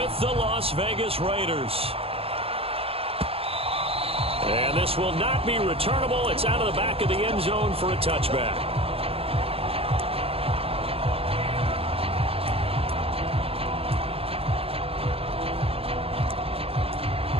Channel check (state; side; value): late; left; 0.28 ms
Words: the Las Vegas Raiders. And this will not be returnable. It's out of the back of the end zone for a touchback.